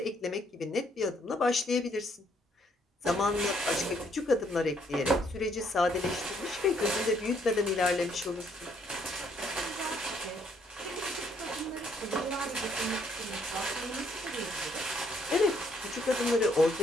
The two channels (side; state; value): both; normal; correlation 0.69